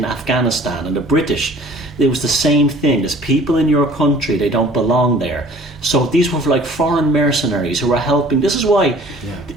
Afghanistan and the British, it was the same thing. There's people in your country, they don't belong there. So these were like foreign mercenaries who were helping. This is why,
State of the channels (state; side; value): normal; both; correlation 0.50